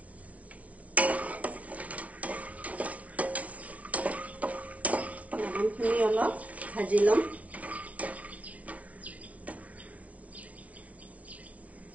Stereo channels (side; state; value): left; late; 0.067 ms